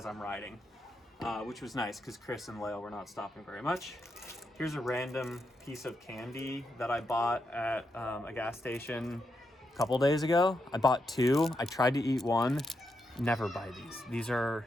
I'm riding. Which was nice because Chris and Lael were not stopping very much. Here's a random piece of candy that I bought at a gas station a couple days ago. I bought 2. I tried to eat 1. Never buy these. These are,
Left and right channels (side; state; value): both; normal; correlation 0.83